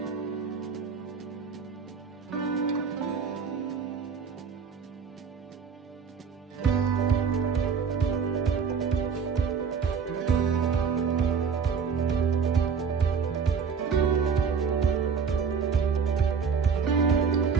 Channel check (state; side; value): quieter; left; 6.1 dB